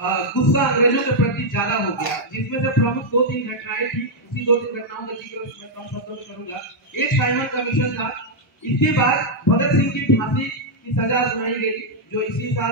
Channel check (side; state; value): both; normal; correlation -0.03